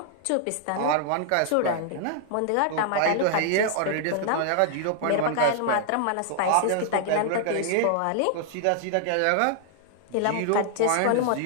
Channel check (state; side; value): different; both; correlation -0.01